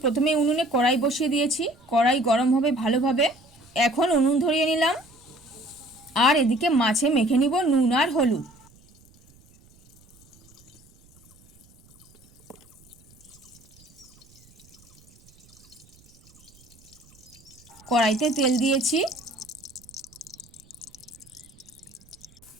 প্রথমেই উনুনে কড়াই বসিয়ে দিয়েছি। কড়াই গরম হবে ভালোভাবে। এখন উনুন ধরিয়ে নিলাম। আর এদিকে মাছে মেখে নিব নুন আর হলুদ। কড়াইতে তেল দিয়েছি।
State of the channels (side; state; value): right; noise; rumble, 28 dB below the sound